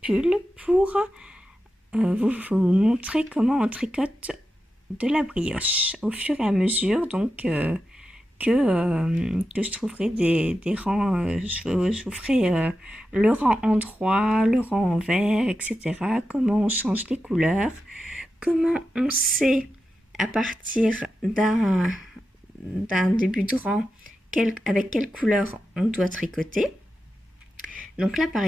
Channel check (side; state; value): both; normal; correlation 0.90